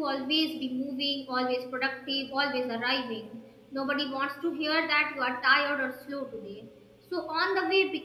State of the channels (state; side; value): identical; both; correlation 1.00